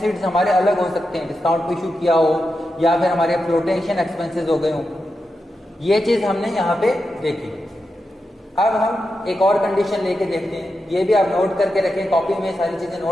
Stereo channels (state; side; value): normal; both; correlation 0.88